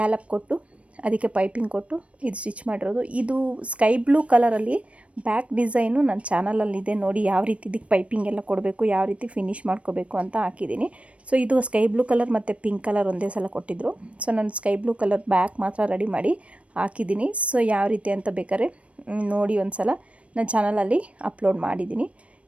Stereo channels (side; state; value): left; late; 0.063 ms